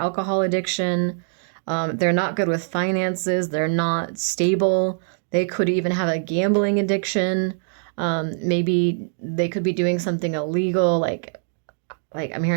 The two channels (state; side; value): silent; left; digital silence